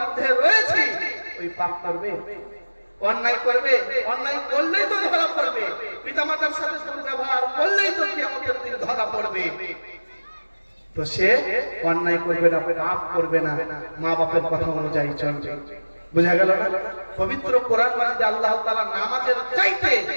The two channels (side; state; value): both; inverted; correlation -1.00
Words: রয়েছি, ওই পাপ করবে, অন্যায় করবে, অন্যায় করলেই তো ধরা পড়বে, পিতামাতার সাথে দুর্ব্যবহার করলেই তো কিয়ামতের দিন ধরা পড়বে। তো সে অন্যায় করবে না, পাপ করবে না, মা বাপের কথা অনুযায়ী চলবে। বুঝা গেল না? পবিত্র কোরআন মাজিদে আল্লাহ তাআলা নামাজের চাইতে